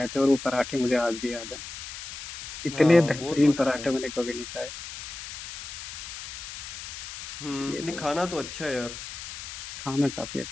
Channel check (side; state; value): left; noise; hiss, 10 dB below the sound